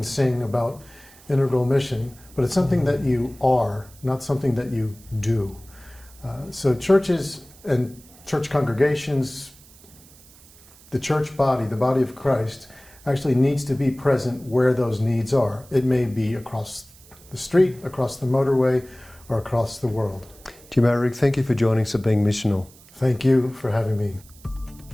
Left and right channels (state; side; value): noise; right; hiss, 24 dB below the sound